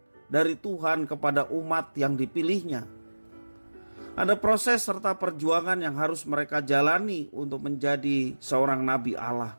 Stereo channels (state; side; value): inverted; both; correlation -1.00